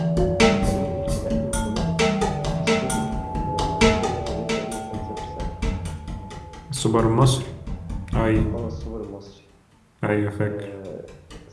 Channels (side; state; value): both; identical; correlation 1.00